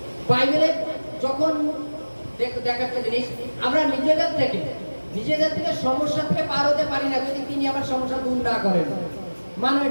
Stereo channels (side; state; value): both; inverted; correlation -1.00